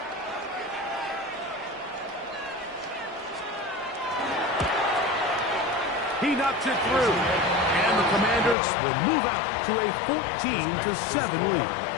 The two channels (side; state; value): right; drops out; at 8.6 s